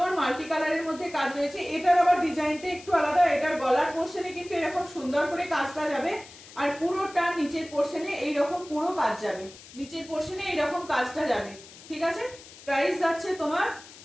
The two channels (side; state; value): left; noise; hiss, 19 dB below the sound